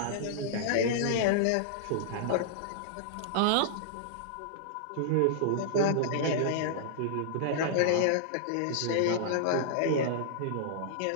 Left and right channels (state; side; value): different; both; correlation -0.01